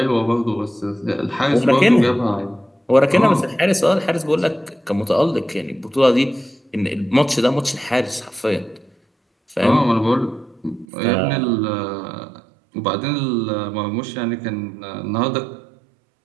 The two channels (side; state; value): left; drops out; at 10.9 s